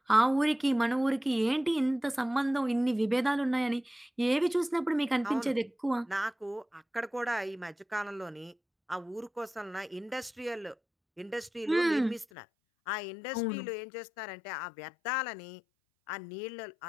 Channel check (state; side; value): drops out; right; at 12.2 s